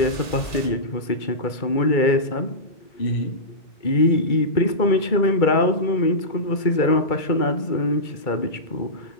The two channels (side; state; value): right; late; 2.3 ms